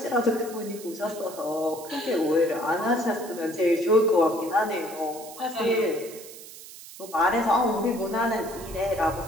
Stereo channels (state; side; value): noise; right; hiss, 16 dB below the sound